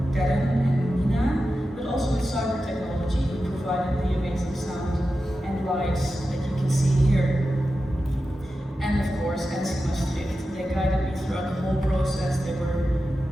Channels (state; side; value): normal; both; correlation 0.92